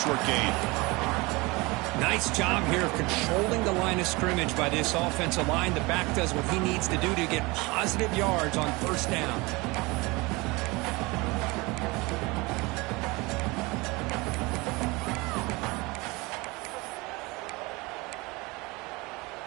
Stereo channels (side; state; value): left; quieter; 24.3 dB